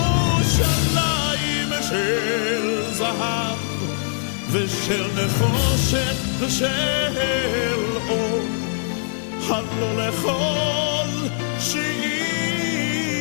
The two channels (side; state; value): right; silent; digital silence